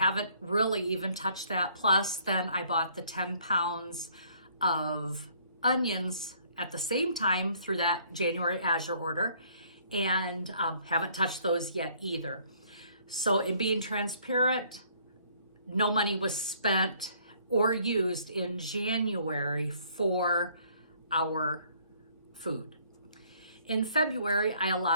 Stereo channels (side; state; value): both; inverted; correlation -0.61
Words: really even touched that. Plus, then I bought the 10 pounds of onions at the same time through that January Azure order, and haven't touched those yet either. So in being transparent, no money was spent or used in January for our food. In February, I